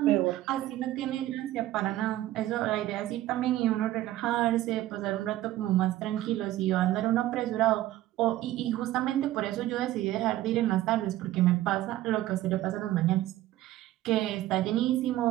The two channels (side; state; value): left; quieter; 14.9 dB